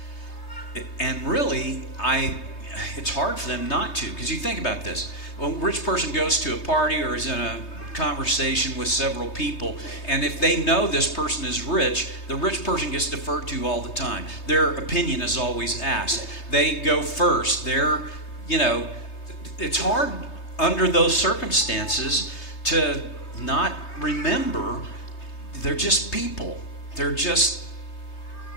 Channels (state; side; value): late; right; 3.3 ms